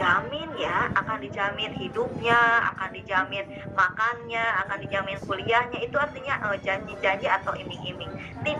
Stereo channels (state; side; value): identical; both; correlation 1.00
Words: ya, akan dijamin hidupnya, akan dijamin makannya, akan dijamin kuliahnya. Itu artinya janji-janji atau iming-iming.